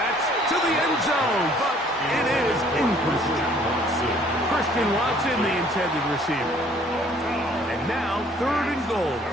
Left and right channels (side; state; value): both; normal; correlation 0.58